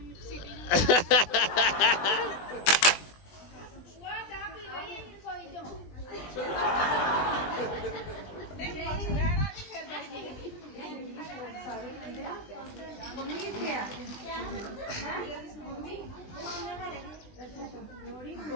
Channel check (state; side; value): late; right; 20 ms